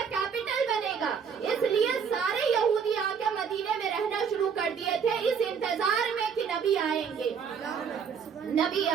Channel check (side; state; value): left; quieter; 6.8 dB